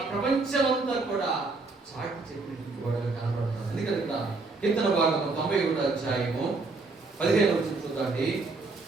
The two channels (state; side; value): quieter; left; 3.7 dB